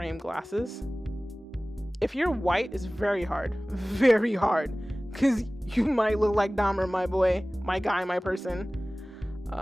glasses. If you're white, it's very hard, because you might look like Dahmer, my boy, my guy, my person.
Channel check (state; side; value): normal; both; correlation 0.98